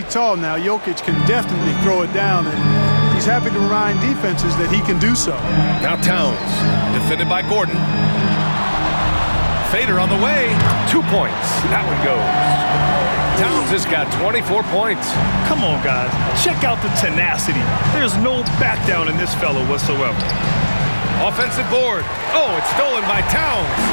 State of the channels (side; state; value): both; inverted; correlation -1.00